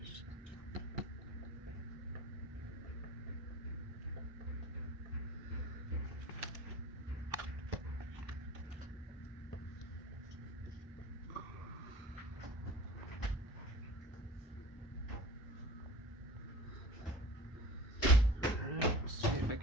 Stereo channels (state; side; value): normal; both; correlation 0.39